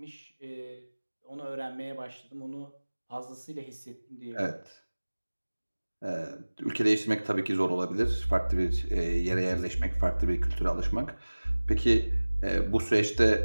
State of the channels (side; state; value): both; inverted; correlation -1.00